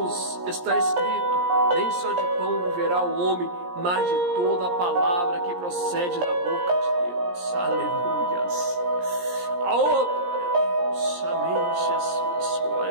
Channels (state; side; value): late; left; 17 ms